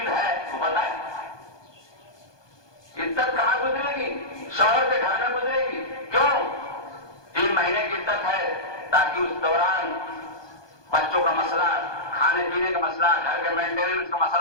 ہے تو بتائے۔ عدت کہاں گزرے گی؟ شوہر کے گھر میں گزرے گی۔ کیوں؟ 3 مہینے کی عدت ہے تاکہ اس دوران بچوں کا مسئلہ، کھانے پینے کا مسئلہ، گھر کے مینٹیننس کا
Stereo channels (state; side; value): late; right; 1.2 ms